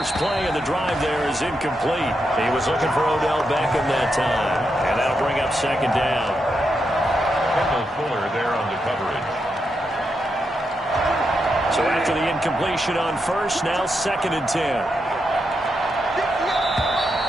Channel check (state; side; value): normal; both; correlation 0.84